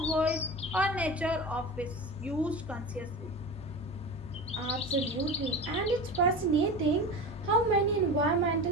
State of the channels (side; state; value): both; normal; correlation 0.29